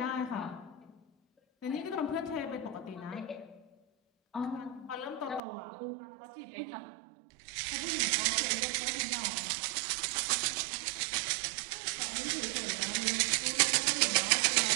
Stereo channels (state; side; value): drops out; left; at 5.4 s